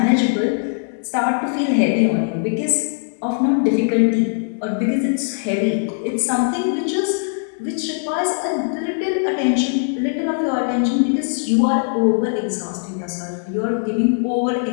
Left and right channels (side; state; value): right; silent; 66 dB below the other